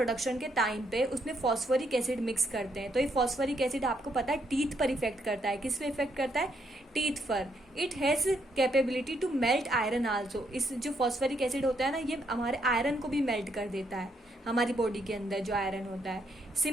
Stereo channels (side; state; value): both; normal; correlation 0.75